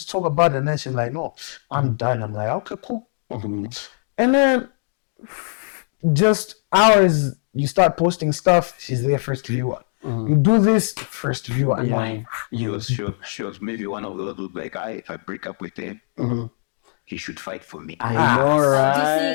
talk about it. And then she's like, no, I'm done. I'm like, okay, cool. And then just hours, you start posting stuff. She's there first viewer. You do this first viewer. Yeah. She was maybe one of those like, if I break up with him, he should fight for me. I know, right? You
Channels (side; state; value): right; silent; digital silence